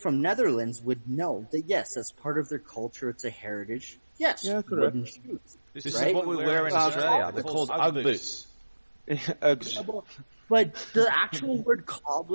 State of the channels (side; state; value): both; inverted; correlation -1.00